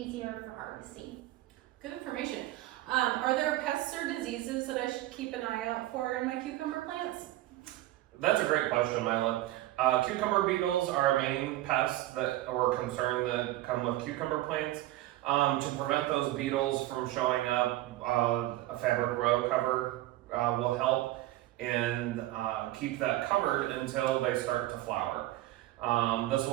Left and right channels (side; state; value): left; quieter; 16.1 dB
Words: for harvesting. Good information. Are there pests or diseases that I should keep an eye out for in my cucumber plants? That's a great question, Mila. Cucumber beetles are a main pest or concern that come with cucumber plants. To prevent those beetles from showing up, a fabric row cover will help and keep that covered until they start to flower. This